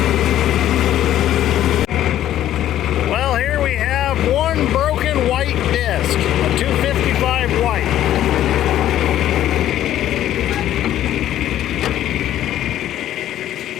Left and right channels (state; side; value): quieter; right; 12.3 dB